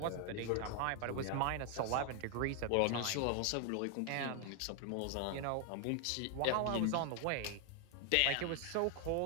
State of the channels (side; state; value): both; different; correlation 0.00